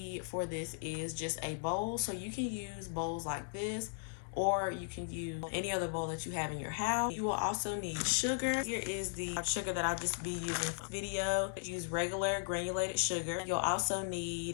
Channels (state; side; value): silent; right; digital silence